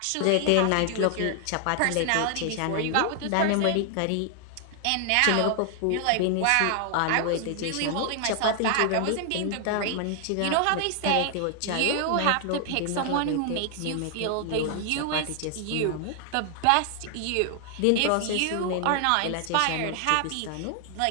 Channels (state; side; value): different; both; correlation 0.00